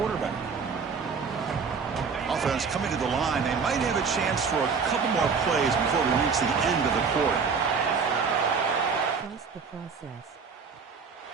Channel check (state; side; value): quieter; left; 5.6 dB